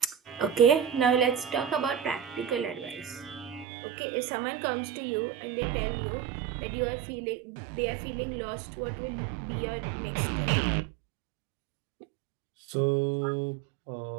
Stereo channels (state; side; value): drops out; left; at 3.7 s